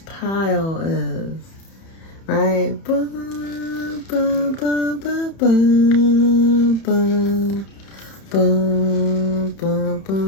pile is, right? Bum, bum, bum, bum, bum, bum, bum, bum,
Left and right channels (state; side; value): late; right; 31 ms